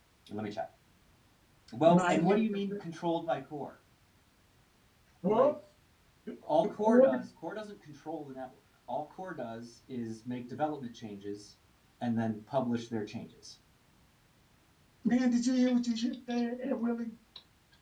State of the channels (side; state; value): both; identical; correlation 1.00